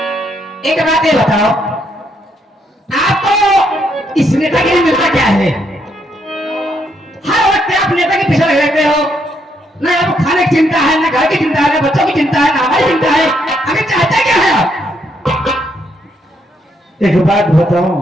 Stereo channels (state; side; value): normal; both; correlation 0.74